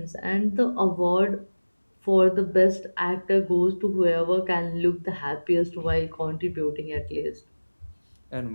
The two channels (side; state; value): both; inverted; correlation -1.00